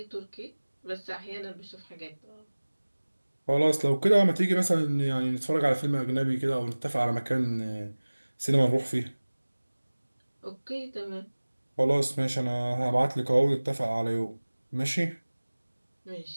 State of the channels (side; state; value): both; inverted; correlation -1.00